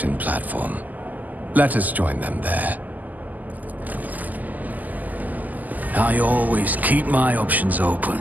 platform. Let us join them there. I always keep my options open.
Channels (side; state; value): left; late; 0.081 ms